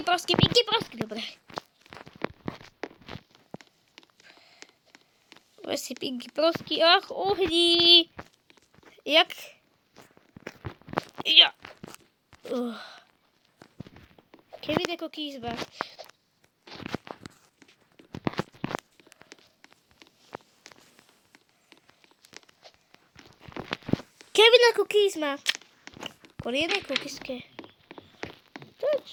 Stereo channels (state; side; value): identical; both; correlation 1.00